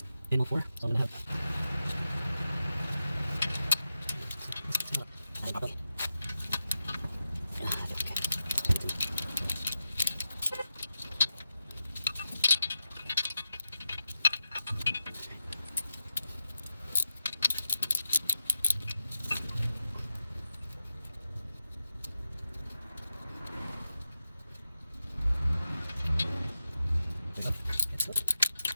in all 4. So I'm going to have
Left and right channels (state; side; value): inverted; both; correlation -0.90